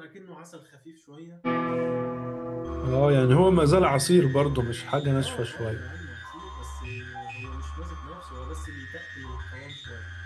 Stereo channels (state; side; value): identical; both; correlation 1.00